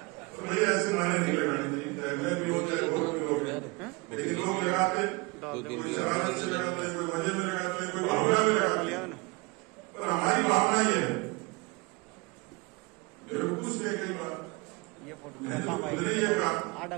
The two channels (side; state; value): left; quieter; 26.6 dB